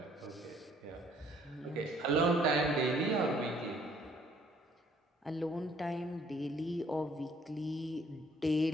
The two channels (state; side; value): normal; both; correlation 0.62